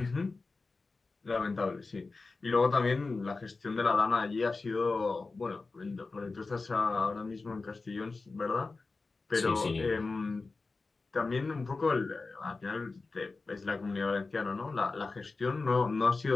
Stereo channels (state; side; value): quieter; right; 3.8 dB